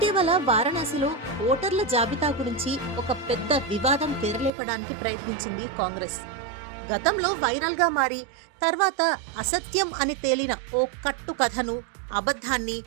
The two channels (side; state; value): left; drops out; at 4.5 s